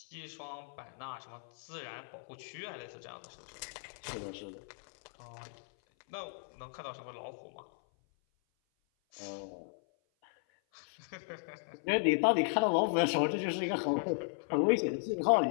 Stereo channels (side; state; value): right; silent; 54 dB below the other